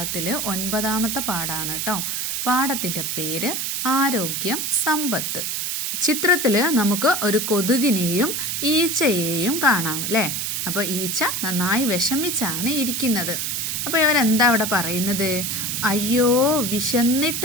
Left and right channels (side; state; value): right; noise; hiss, 2 dB below the sound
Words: 9ാമത്തെ പാഠമാണ് കേട്ടോ. പാഠത്തിൻ്റെ പേര് ആരോഗ്യം സമ്പത്ത്. ചിത്രത്തിൽ നമുക്ക് ഒരു കൊതുകിനെയും ഈച്ചയെയും കാണാം അല്ലേ. അപ്പോൾ ഈച്ച നന്നായി വിഷമിച്ചാണ് ഇരിക്കുന്നത്. അപ്പോൾ ഇവരെന്താ അവിടെ പറയുന്നത്? അയ്യോ